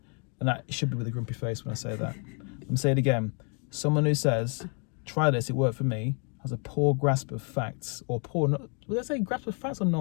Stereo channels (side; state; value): right; quieter; 39.0 dB